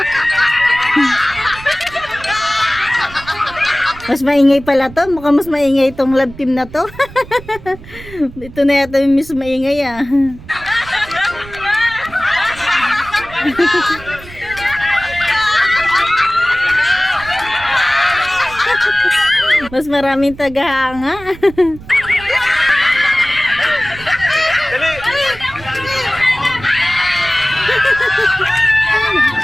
Mas maingay pala to. Mukhang mas maingay itong love team na to. Ito na yata yung mas maingay ah. Mas maraming tagahanga. Dali.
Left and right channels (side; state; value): right; noise; rumble, 17 dB below the sound